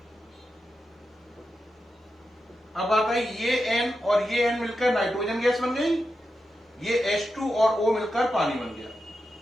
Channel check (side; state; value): both; normal; correlation 0.89